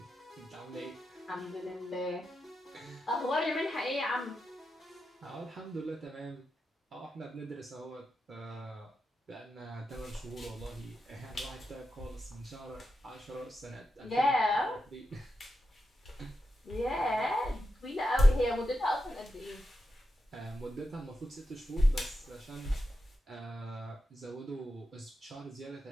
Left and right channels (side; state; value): both; normal; correlation 0.88